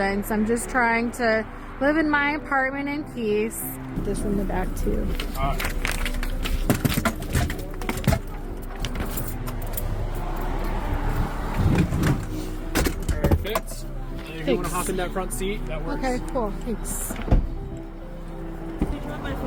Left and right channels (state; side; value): identical; both; correlation 1.00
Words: I'm just trying to live in my apartment in peace. This in the back, too. Perfect. And if you want to hop in that front seat, that works. Okay, cool. Thanks. Did you want my